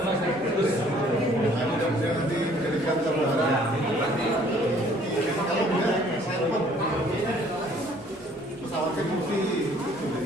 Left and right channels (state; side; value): normal; both; correlation 0.58